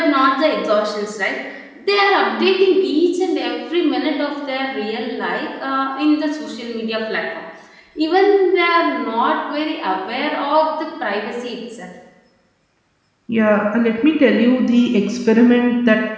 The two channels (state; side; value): identical; both; correlation 1.00